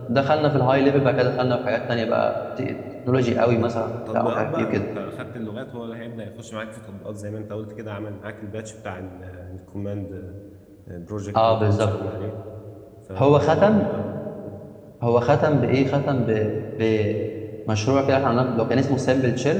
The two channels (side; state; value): both; identical; correlation 1.00